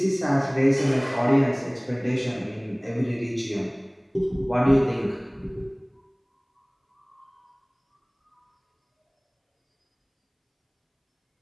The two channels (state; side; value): identical; both; correlation 1.00